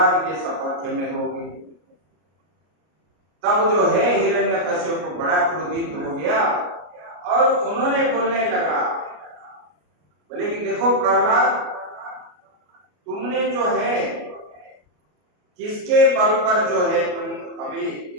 के सपक्ष में हो गए। तब जो है हिरण्यकश्यप को बड़ा क्रोधित हो गया और उन्होंने बोलने लगा, बोले कि देखो प्रहलाद, तुमने जो है किसके बल पर जो है तुम अभी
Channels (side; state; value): left; late; 33 ms